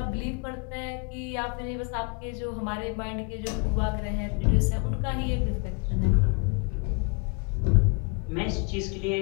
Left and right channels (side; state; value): right; quieter; 33.1 dB